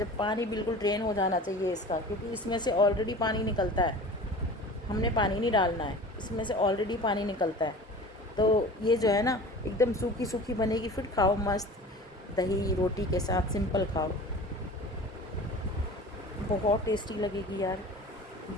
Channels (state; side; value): normal; both; correlation 0.39